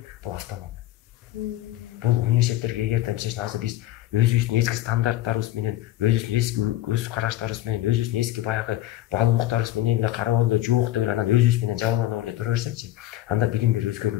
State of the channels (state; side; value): quieter; right; 14.6 dB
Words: бул автономия. Бул университеттерге эгерде мисалы азыр биз өзүбүздүн эски стандарттарыбыз менен, өзүбүздүн эски көз караштарыбыз менен, өзүбүздүн эски баягы баалуулуктарыбыз менен эле карап эле жок деп анан өзүбүз менен жабыланып эле тура берсекчи, анда билим берүү